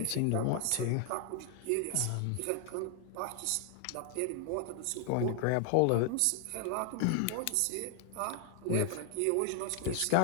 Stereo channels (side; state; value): both; different; correlation 0.00